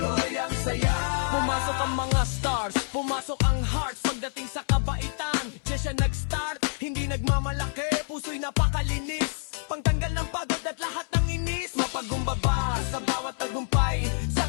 ang saya. Pumasok ang mga stars, pumasok ang hearts. Pagdating sa kabaitan, siya nag-start. Hindi nagmamalaki, puso'y napakalinis. Pangtanggal ng pagod at lahat ng inis. Mapagumbaba sa bawat tagumpay. Sa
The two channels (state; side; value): silent; right; 59 dB below the other